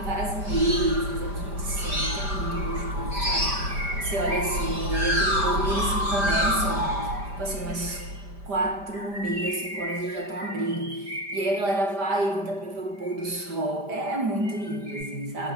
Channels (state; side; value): late; left; 5.0 ms